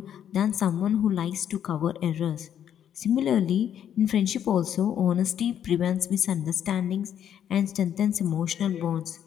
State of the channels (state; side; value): quieter; right; 9.6 dB